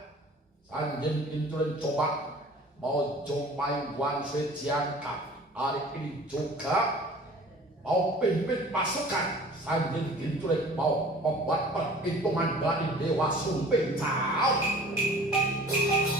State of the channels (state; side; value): normal; both; correlation 0.46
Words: Sanjin Kintulik coba mau jumpai Wan Sui Jiangka hari ini juga mau pimpin pasukan. Sanjin Kintulik mau membuat perhitungan dari Dewa Sumping. Cao.